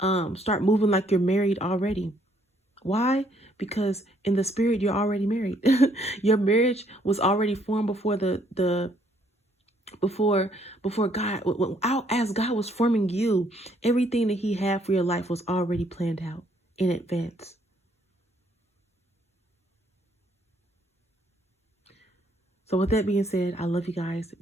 start moving like you're married already. Why? Because in the spirit, you're already married. Your marriage was already formed before before God, as God was forming you. Everything that he had for your life was already planned out in advance. So with that being said, I love you guys.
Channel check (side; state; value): both; normal; correlation 0.67